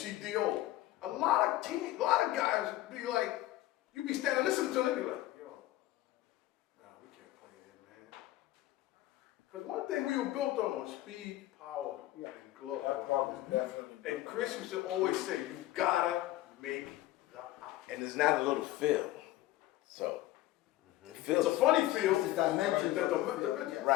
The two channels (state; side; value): quieter; right; 15.8 dB